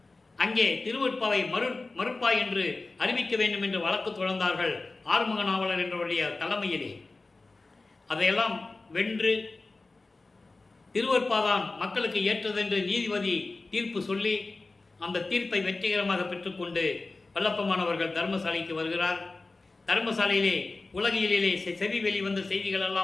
அங்கே திருவற்பாவை மறுப்பாய் என்று அறிவிக்க வேண்டும் என்று வழக்கு தொடர்ந்தார்கள் ஆறுமுக நாவலர் என்றவருடைய தலைமையிலே. அதையெல்லாம் வென்று திருவற்பாதான் மக்களுக்கு ஏற்றதென்று நீதிபதி தீர்ப்பு சொல்லி அந்த தீர்ப்பை வெற்றிகரமாக பெற்றுக்கொண்டு வல்லப்பமானவர்கள் தர்மசாலைக்கு வருகிறார். தர்மசாலையிலே உலகியலிலே செவி வெளிவந்த செய்திகள்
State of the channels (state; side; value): quieter; right; 3.5 dB